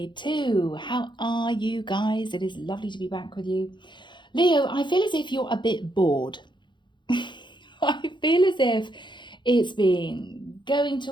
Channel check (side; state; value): right; late; 0.23 ms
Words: How are you guys? It is lovely to be back with you. Leo, I feel as if you're a bit bored. I feel as if it's been going to